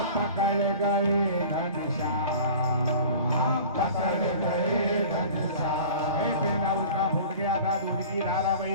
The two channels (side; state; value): both; inverted; correlation -0.42